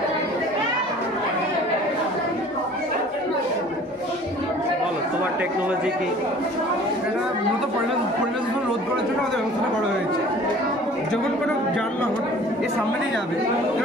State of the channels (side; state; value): both; normal; correlation 0.48